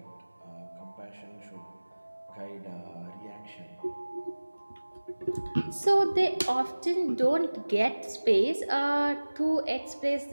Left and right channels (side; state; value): both; inverted; correlation -1.00